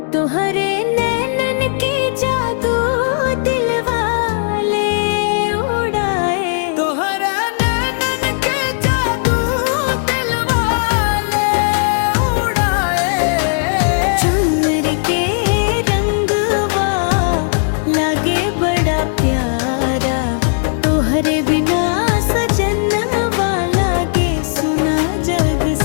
तोहरे नैनन के जादू दिल वाले उड़ाए। तोहरे नैनन के जादू दिल वाले उड़ाए। चुनरी के रंगवा लागे बड़ा प्यारा, तोहरे बिना सजनवा लागे सुना जग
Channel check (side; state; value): right; silent; digital silence